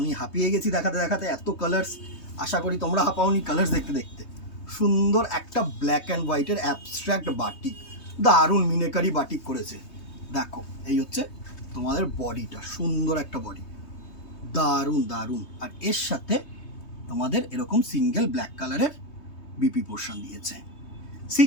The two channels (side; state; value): right; late; 3.2 ms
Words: হাঁপিয়ে গেছি দেখাতে দেখাতে, এত কালার্স। আশা করি তোমরা হাঁপাওনি কালার্স দেখতে দেখতে। সুন্দর একটা ব্ল্যাক অ্যান্ড হোয়াইটের অ্যাবস্ট্রাক্ট বাটিক, দারুণ মিনেকারি বাটিক করেছে। দেখো এই হচ্ছে তোমাদের বডিটা, সুন্দর একটা বডি, দারুণ দারুণ। আর এর সাথে তোমাদের এরকম সিঙ্গেল ব্ল্যাক কালারের বিপি পোর্শন দিয়েছে।